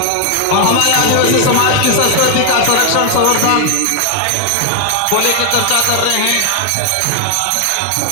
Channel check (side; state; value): both; different; correlation 0.00